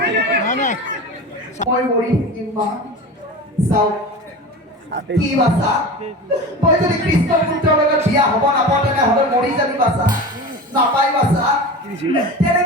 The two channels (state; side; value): normal; both; correlation 0.31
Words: মই মৰি থাকিম মা চাওক কি বাচ্চা তই যদি কৃষ্ণ পুত্ৰৰ লগত বিয়া হ'ব নাপাওঁ তেনেহ'লে মৰি যাবি বাচ্চা নাপাই বাচ্চা